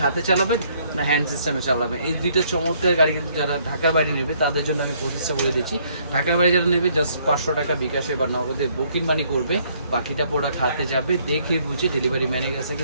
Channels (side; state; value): both; inverted; correlation -0.66